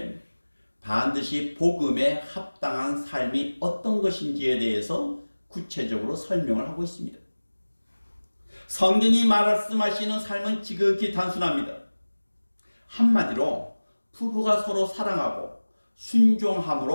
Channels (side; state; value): both; inverted; correlation -1.00